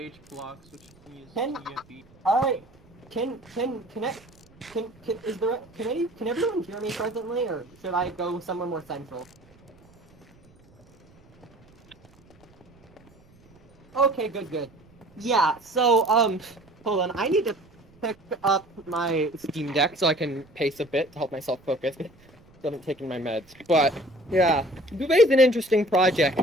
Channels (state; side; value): noise; right; rumble, 29 dB below the sound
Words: blocks, which you can use TFE. Alright, can everyone hear me presently, or should I go somewhere more central? Okay, good. Yeah, so, hold on, I need to pick up my Steam Deck so I can pace a bit to help myself focus. I haven't taken my meds, but Yeah, Dubai's an interesting